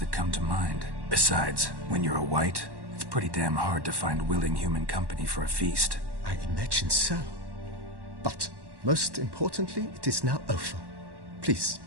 come to mind. Besides, when you're a wight, it's pretty damn hard to find willing human company for a feast. I imagine so. But, most importantly, it is now over. Please,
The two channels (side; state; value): left; late; 1.1 ms